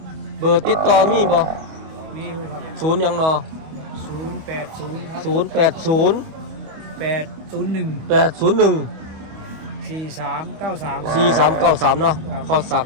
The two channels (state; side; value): late; left; 25 ms